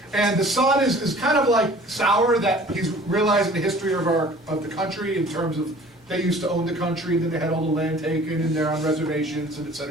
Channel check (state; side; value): normal; both; correlation 0.49